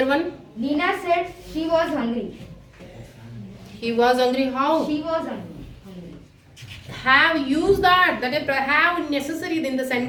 one? Nina said she was hungry. He was hungry. How? She was hungry. Have used that. That is have necessary in the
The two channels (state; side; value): identical; both; correlation 1.00